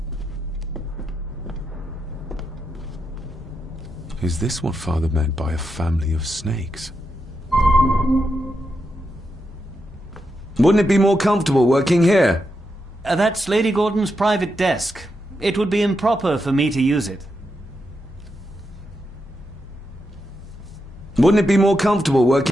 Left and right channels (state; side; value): normal; both; correlation 0.85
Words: Is this what Father meant by a family of snakes? Wouldn't it be more comfortable working here? That's Lady Gordon's private desk. It would be improper for me to use it. Wouldn't it be more comfortable